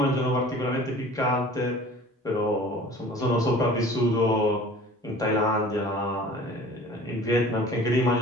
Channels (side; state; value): both; normal; correlation 0.45